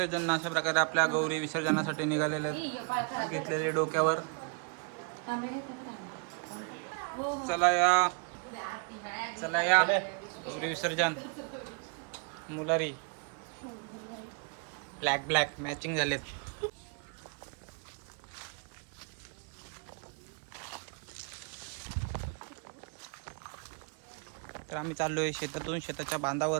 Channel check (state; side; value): quieter; left; 37.5 dB